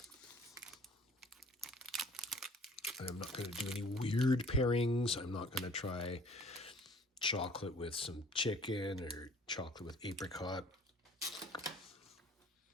not going to do any weird pairings. I'm not going to try chocolate with some chicken or chocolate with apricot.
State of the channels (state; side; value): normal; both; correlation 0.52